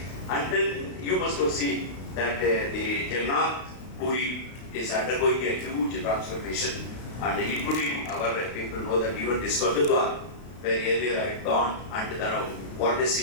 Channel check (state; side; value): late; right; 32 ms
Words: And then you must have seen that the Jagannath Puri is undergoing a huge transformation, and including our people know that even this Gurdwara, where earlier I had gone, and now what does